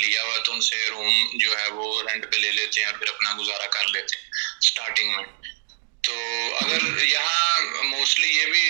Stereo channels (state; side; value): silent; left; digital silence